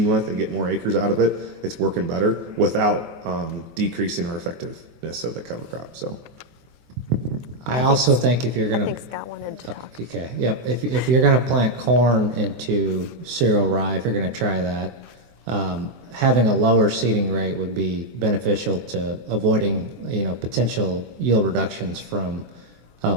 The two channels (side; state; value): left; late; 24 ms